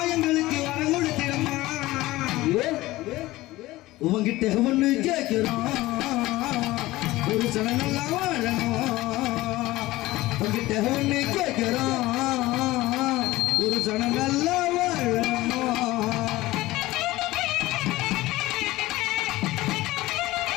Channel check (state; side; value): quieter; right; 18.2 dB